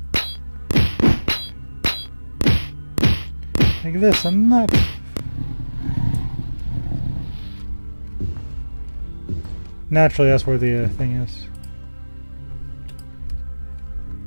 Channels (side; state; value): both; inverted; correlation -1.00